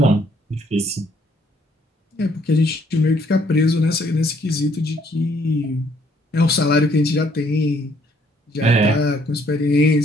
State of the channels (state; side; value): normal; both; correlation 0.66